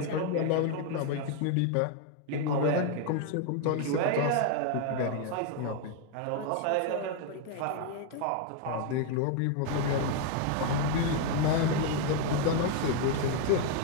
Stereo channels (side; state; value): both; different; correlation 0.01